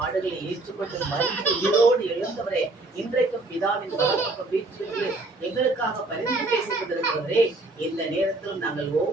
ஏற்றுக்கொண்டு மறித்து உயிரோடு எழுந்தவரே, இன்றைக்கும் பிதாவின் வலப்பக்கம் வீற்றிருந்து எங்களுக்காக பரிந்து பேசிக் கொண்டிருக்கிறவரே, இந்த நேரத்தில் நாங்கள்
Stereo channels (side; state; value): left; quieter; 3.1 dB